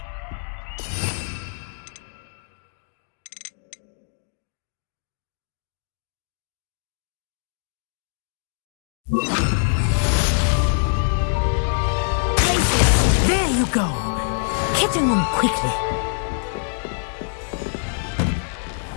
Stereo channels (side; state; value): right; silent; digital silence